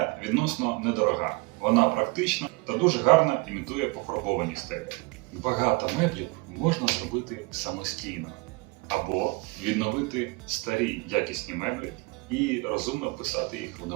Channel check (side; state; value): left; quieter; 25.7 dB